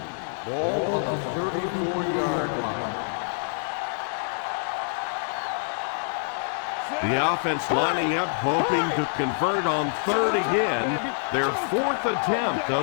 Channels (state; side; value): silent; right; digital silence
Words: Ball on the 34-yard line. The offense lining up, hoping to convert on third again. Their 4th attempt